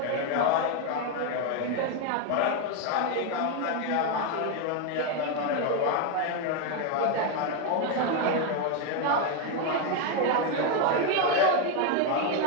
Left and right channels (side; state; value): both; different; correlation 0.01